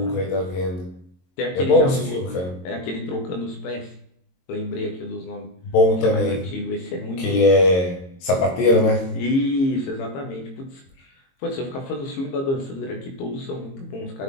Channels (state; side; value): late; right; 22 ms